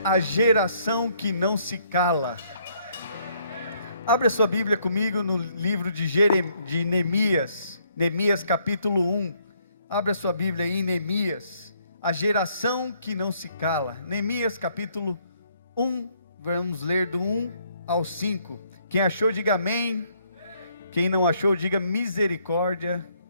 a geração que não se cala. Abra sua Bíblia comigo no livro de Neemias, Neemias capítulo 1. Abra sua Bíblia aí em Neemias, a geração que não se cala. Neemias capítulo 1, vamos ler do 1 ao 5. Quem achou, diga amém. Quem não achou, diga misericórdia.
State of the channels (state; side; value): inverted; both; correlation -0.68